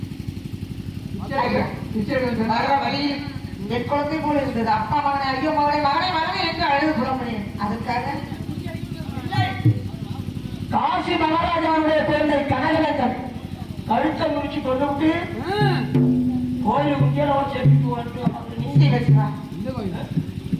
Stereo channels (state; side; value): identical; both; correlation 1.00